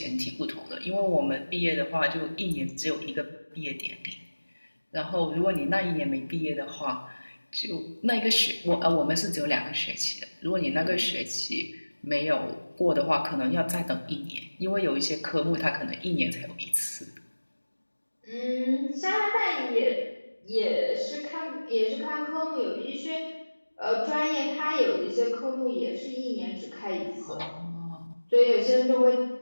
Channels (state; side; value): inverted; both; correlation -1.00